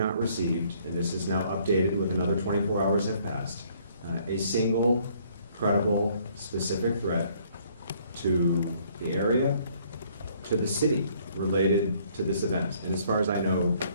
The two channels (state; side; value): inverted; both; correlation -0.63